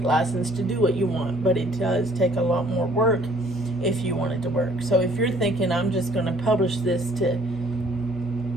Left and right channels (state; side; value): normal; both; correlation 0.58